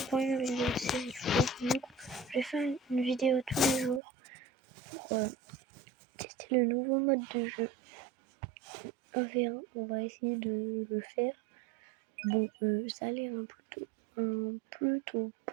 pour une vidéo de série fou. Du coup, je vais faire une vidéo tous les jours pour tester le nouveau mode de jeu. 1v1, on va essayer de le faire. Bon, ça a l'air un plutôt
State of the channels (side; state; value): left; drops out; at 4.0 s